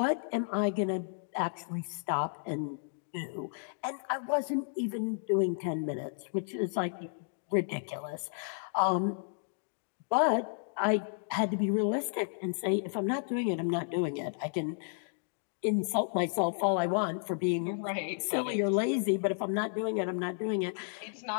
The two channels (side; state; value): right; silent; digital silence